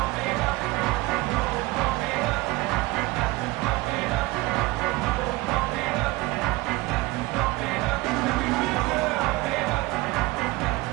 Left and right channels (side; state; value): left; quieter; 21.6 dB